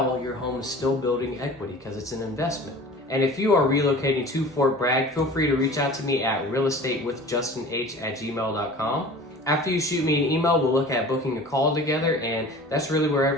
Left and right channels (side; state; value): both; normal; correlation 0.41